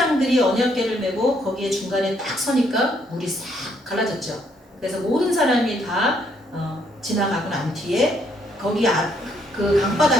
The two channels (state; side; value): normal; both; correlation 0.71